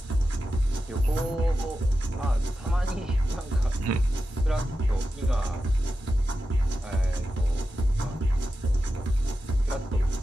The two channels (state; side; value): normal; both; correlation 0.91